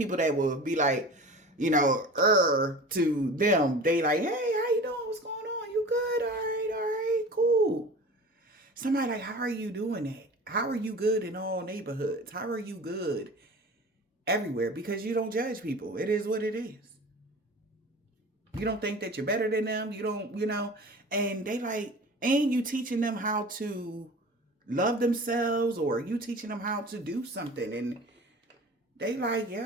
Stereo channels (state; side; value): normal; both; correlation 0.38